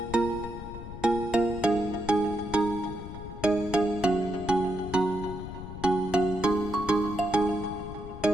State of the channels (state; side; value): noise; left; rumble, 11 dB below the sound